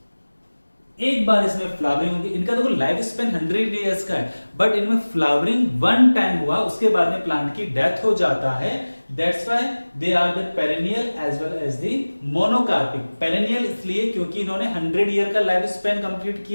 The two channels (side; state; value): both; inverted; correlation -1.00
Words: एक बार इसमें फ्लावरिंग होगी। इनका देखो लाइफ स्पेन 100 ईयर्स का है, बट इनमें फ्लावरिंग वन टाइम हुआ, उसके बाद में प्लांट की डेथ हो जाता है। That's why they are the perennial as well as the monocarpic. Perennial इसलिए क्योंकि इन्होंने 100 ईयर का लाइफ स्पेन कंप्लीट